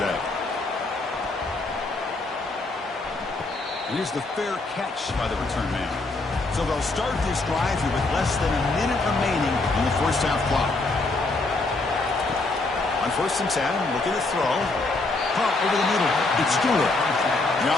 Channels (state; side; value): quieter; right; 3.3 dB